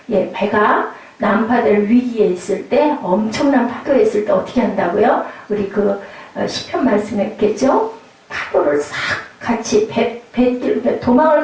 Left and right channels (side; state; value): both; identical; correlation 1.00